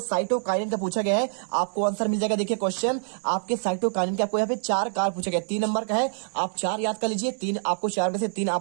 साइटोकाइनिन का पूछा गया है, आपको आंसर मिल जाएगा। देखिए क्वेश्चन आपके साइटोकाइनिन के आपको यहाँ पे 4 कार्य पूछा गया, 3 नंबर का है, आप 4 याद कर लीजिए। 3 आपको 4 में से 3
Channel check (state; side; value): silent; left; digital silence